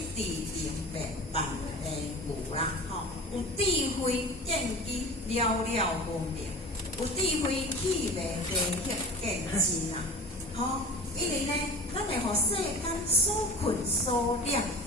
直明白万年无啦，吼。有智慧见机了了分明，有智慧气味地血见真啊，吼。因为呢，咱会互世间所困所了。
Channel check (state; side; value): normal; both; correlation 0.38